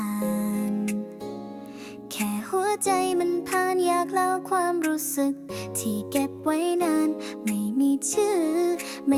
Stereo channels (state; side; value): identical; both; correlation 1.00